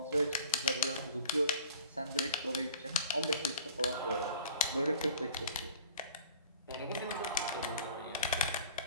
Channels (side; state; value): both; inverted; correlation -0.46